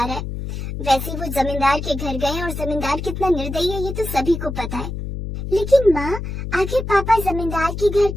रहा है। वैसे वो जमींदार के घर गए और जमींदार कितना निर्दयी है ये तो सभी को पता है। लेकिन माँ, आखिर पापा जमींदार के घर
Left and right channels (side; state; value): left; noise; hum, 6 dB below the sound